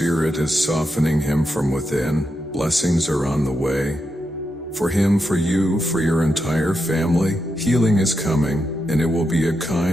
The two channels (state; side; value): normal; both; correlation 0.85